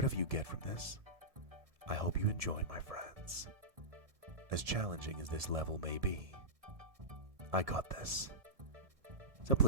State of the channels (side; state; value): left; late; 1.7 ms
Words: you get from this, I hope you enjoy, my friends. As challenging as this level may be, I got this. So